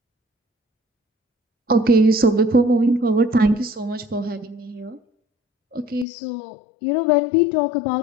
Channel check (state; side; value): drops out; right; at 6.1 s